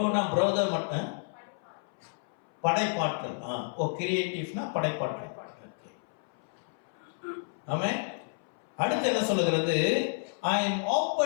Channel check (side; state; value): right; silent; 57 dB below the other